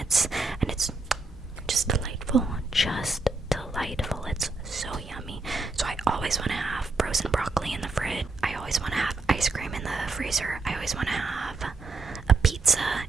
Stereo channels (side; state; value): left; quieter; 3.4 dB